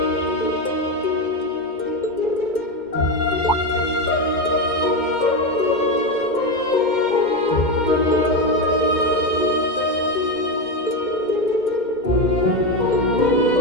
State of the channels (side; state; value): right; late; 2.1 ms